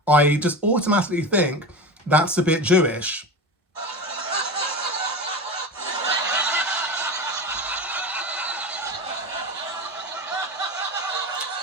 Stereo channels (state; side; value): normal; both; correlation 0.26